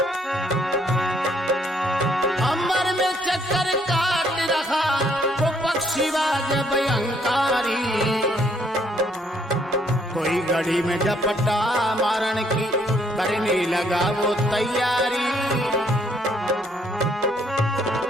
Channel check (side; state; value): both; normal; correlation 0.68